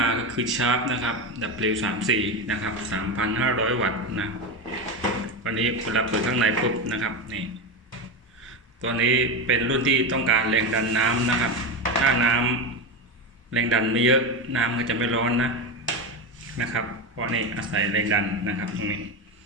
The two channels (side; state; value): both; normal; correlation 0.16